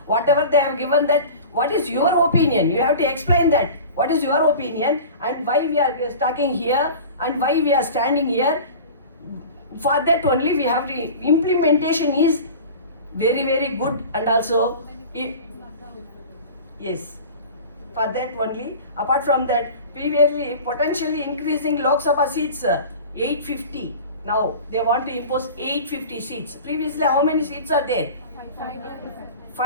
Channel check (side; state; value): both; inverted; correlation -0.36